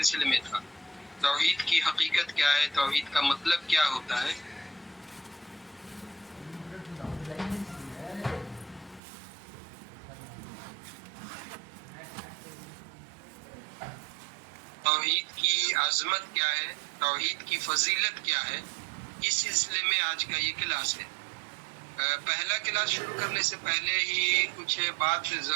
میں تھا۔ توحید کی حقیقت کیا ہے، توحید کا مطلب کیا ہوتا ہے۔ توحید کی عظمت کیا ہے، توحید کی فضیلت کیا ہے، اس سلسلے میں آج کا یہ کلاس ہے۔ پہلا کلاس شروع کرنے سے پہلے ہی کچھ بات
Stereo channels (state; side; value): drops out; left; at 9.0 s